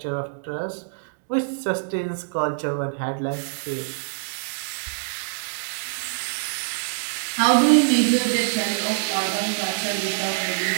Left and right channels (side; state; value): left; silent; digital silence